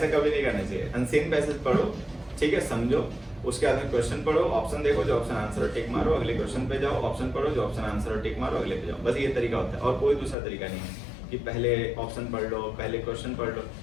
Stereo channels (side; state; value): right; drops out; at 10.4 s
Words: कभी नहीं करना चाहिए। अनसीन पैसेज पढ़ो, ठीक है, समझो, उसके बाद में क्वेश्चन पढ़ो, ऑप्शन देखो, जो ऑप्शन आंसर और टिक मारो, अगले क्वेश्चन पे जाओ, ऑप्शन पढ़ो, जो ऑप्शन आंसर और टिक मारो, अगले पे जाओ। बस ये तरीका होता है, और कोई दूसरा तरीका नहीं है कि पहले ऑप्शन पढ़ लो, पहले क्वेश्चन पढ़ लो।